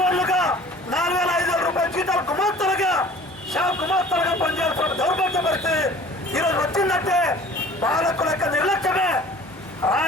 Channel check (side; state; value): both; normal; correlation 0.47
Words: 4,500 రూపాయల జీతాలు గుమాస్తలుగా షాప్ గుమాస్తలుగా పనిచేస్తున్న దౌర్భాగ్య పరిస్థితి ఈరోజు వచ్చిందంటే పాలకుల యొక్క నిర్లక్ష్యమే.